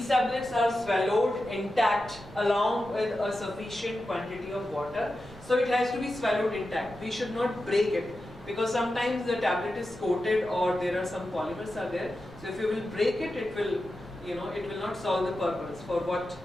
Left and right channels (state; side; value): noise; right; rumble, 20 dB below the sound